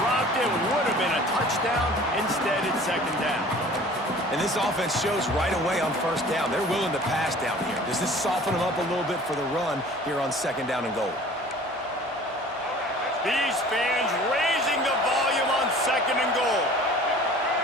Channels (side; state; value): both; normal; correlation 0.47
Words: it. Would have been a touchdown. Instead, it's second down. And this offense shows right away on first down. They're willing to pass down here. Does this soften them up a little bit for the run here on second down and goal? These fans raising the volume on second and goal.